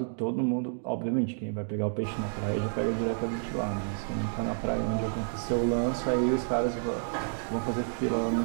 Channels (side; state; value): left; silent; digital silence